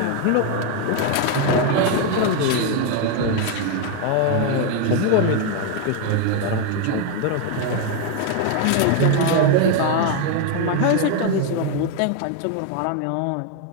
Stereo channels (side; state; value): both; different; correlation 0.01